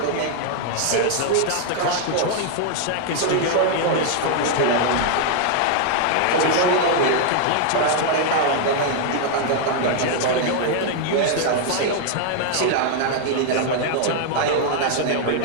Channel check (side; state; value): both; different; correlation 0.00